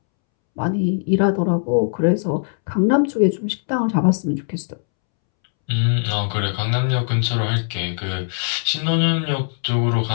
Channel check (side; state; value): right; silent; 65 dB below the other